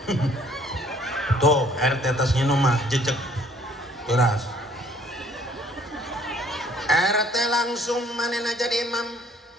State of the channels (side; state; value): both; normal; correlation 0.59